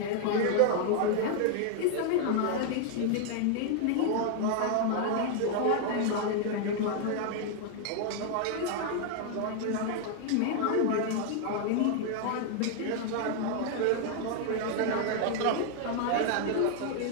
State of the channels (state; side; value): different; both; correlation 0.00